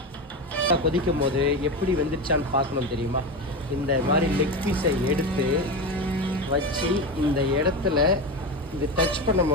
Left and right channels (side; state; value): both; normal; correlation 0.20